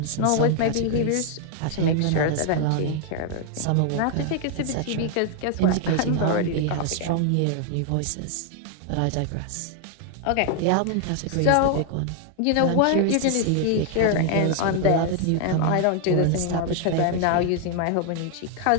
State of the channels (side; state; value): both; different; correlation 0.00